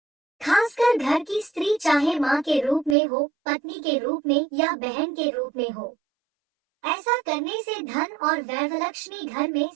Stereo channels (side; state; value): left; drops out; at 3.0 s